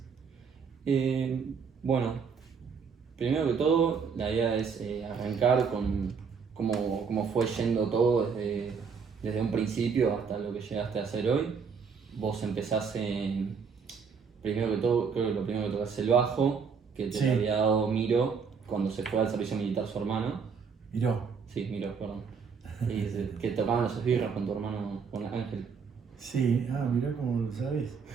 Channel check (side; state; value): left; quieter; 5.9 dB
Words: Bueno, primero que todo, la idea es arrancar con cómo fue yendo todo desde un principio hasta lo que llegaste a hacer hoy. Vos empezás primero que todo, creo que lo primero que tocas es el bajo, que te Sí. lo había dado Miro cuando se fue al servicio militar su hermano. Miró. Sí, Miro, perdón. Que tocaban los esbirros con tu hermano, con Ángel. Sí, mirá cómo lo sabés.